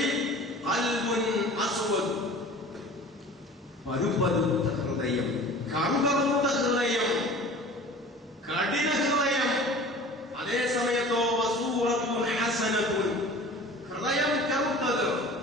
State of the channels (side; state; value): both; normal; correlation 0.42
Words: ഖൽബുൻ അസ്വദ്, പരുപരുത്ത ഹൃദയം, കറുകറുത്ത ഹൃദയം, കഠിന ഹൃദയം. അതേ സമയത്തോ വസൂറത്തുൻ ഹസനത്തുൻ, ഹൃദയം കറുത്തത്,